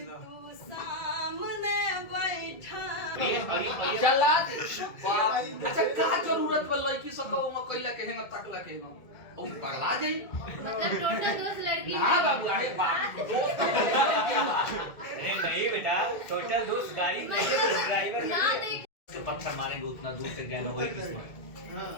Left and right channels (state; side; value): late; right; 1.9 ms